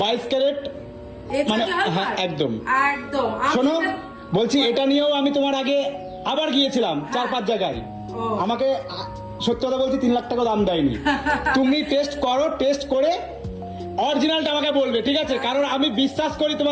22 ক্যারেট, মানে হ্যাঁ একদম একদম। শোনো, বলছি এটা নিয়েও আমি তোমার আগে আবার গিয়েছিলাম 4-5 জায়গায়, আমাকে সত্যি কথা বলছি 3 লাখ টাকা দাম দেয়নি। তুমি টেস্ট করো, টেস্ট করে অরিজিনালটা আমাকে বলবে, ঠিক আছে? কারণ আমি বিশ্বাস করি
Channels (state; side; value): identical; both; correlation 1.00